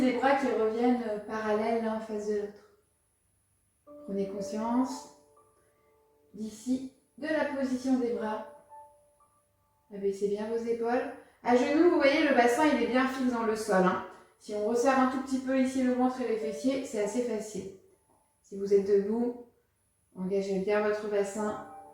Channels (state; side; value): identical; both; correlation 1.00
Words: bras qui reviennent parallèles l'un en face de l'autre. Prenez conscience d'ici, de la position des bras. Abaissez bien vos épaules. À genoux, vous voyez, le bassin, il est bien fixe dans le sol. Hein. Si on resserre un tout petit peu ici le ventre et les fessiers, c'est assez facile. Si vous êtes debout, engagez bien votre bassin,